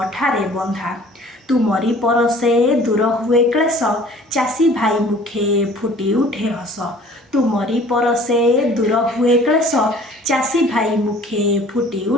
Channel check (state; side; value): normal; both; correlation 0.50